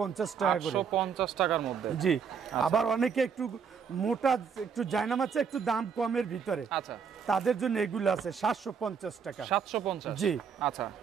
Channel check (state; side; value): quieter; left; 6.5 dB